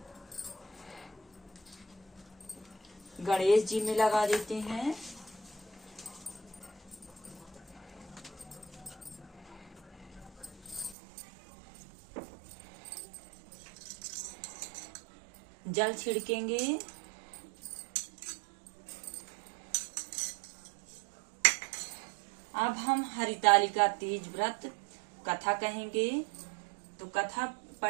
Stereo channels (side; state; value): left; drops out; at 11.0 s